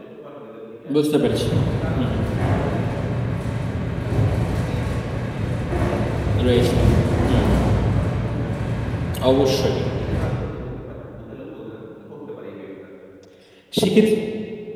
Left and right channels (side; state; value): both; identical; correlation 1.00